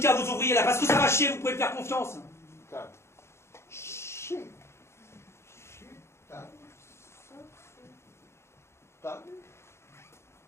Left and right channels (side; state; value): right; late; 0.13 ms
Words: vos ouvriers, là? Parce que ça va chier, vous pouvez me faire confiance. Table. Chier. Table. Ça, c'est... Table.